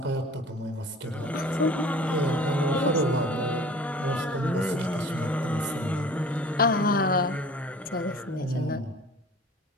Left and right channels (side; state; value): both; normal; correlation 0.45